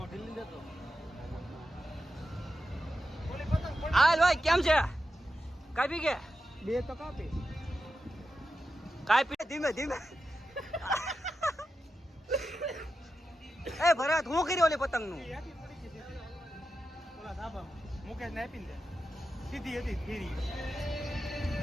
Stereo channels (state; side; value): normal; both; correlation 0.90